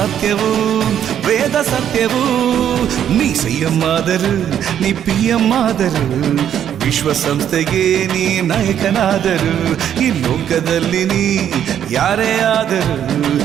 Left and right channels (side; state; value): left; quieter; 9.7 dB